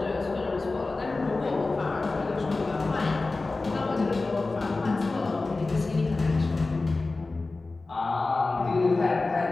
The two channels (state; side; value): quieter; right; 3.5 dB